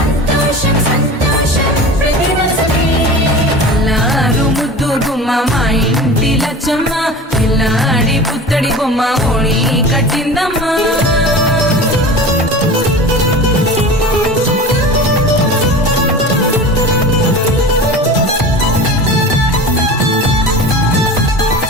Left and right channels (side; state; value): both; normal; correlation 0.34